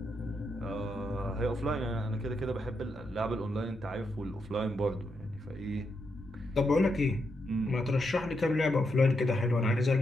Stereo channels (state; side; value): normal; both; correlation 0.82